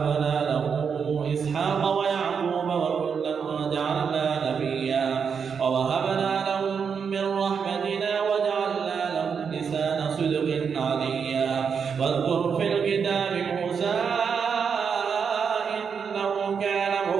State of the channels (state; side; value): quieter; left; 6.5 dB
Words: له إسحاق ويعقوب وكلا جعلنا نبيا ووهبنا لهم من رحمتنا وجعلنا لهم لسان صدق عليا واذكر في الكتاب موسى إنه كان